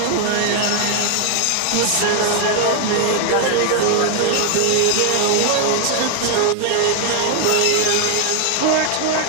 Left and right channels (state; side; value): different; both; correlation 0.00